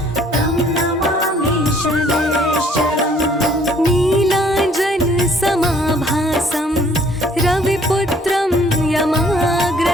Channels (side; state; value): both; normal; correlation 0.60